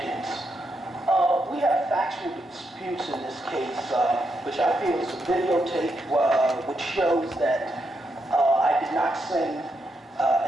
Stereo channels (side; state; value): both; normal; correlation 0.82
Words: We have factual disputes in this case, which I feel is a videotape which shows that I did not sing